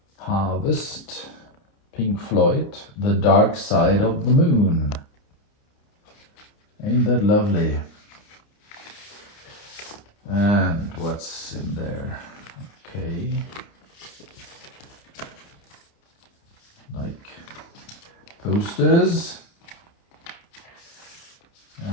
Harvest, Pink Floyd, The Dark Side of the Moon. Ain't that lovely? And what's in there? Okay. Like posters.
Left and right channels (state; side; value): late; right; 29 ms